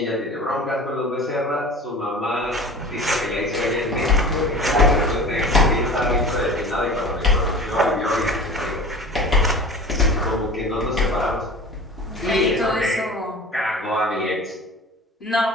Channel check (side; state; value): both; normal; correlation 0.39